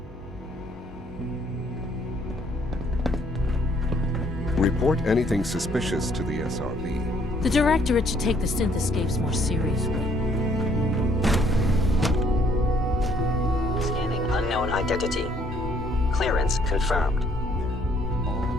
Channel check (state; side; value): normal; both; correlation 0.65